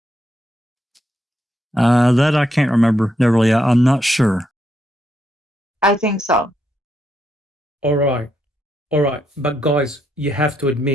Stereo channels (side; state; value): both; normal; correlation 0.78